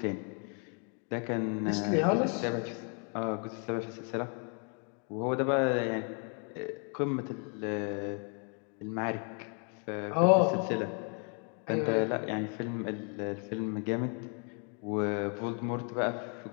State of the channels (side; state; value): right; quieter; 39.8 dB